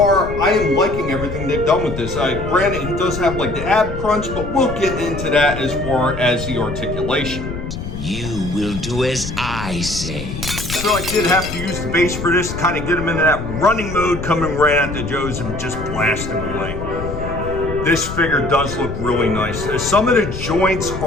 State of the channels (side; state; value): left; noise; rumble, 7 dB below the sound